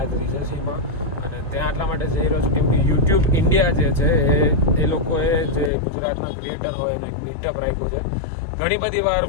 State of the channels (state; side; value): drops out; right; at 5.7 s